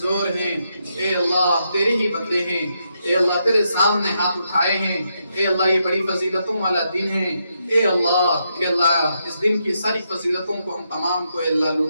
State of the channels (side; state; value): both; inverted; correlation -0.81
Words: ہیں، اے اللہ تیرے ہی بندے ہیں. اے اللہ تیرے سامنے ہاتھ اٹھائے ہیں. اے اللہ یہ بڑی فضیلتوں والا دن ہے. اے اللہ اس دن کی ساری فضیلتوں کو ہم تمام کو اے اللہ